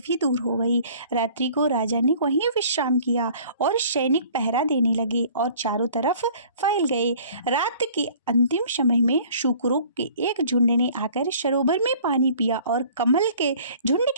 दूर हो गई। रात्रि को राजा ने वहीं विश्राम किया और सैनिक पहरा देने लगे और चारों तरफ फैल गए। रात के अंतिम समय में शुकरों के एक झुंड ने आकर सरोवर में पानी पिया और कमल के झुंड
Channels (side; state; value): both; inverted; correlation -0.51